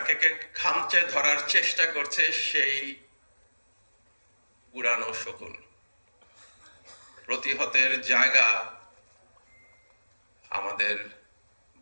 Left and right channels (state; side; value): inverted; both; correlation -1.00